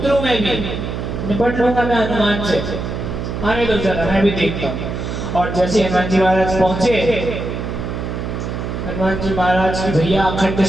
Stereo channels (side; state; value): right; noise; hum, 5 dB below the sound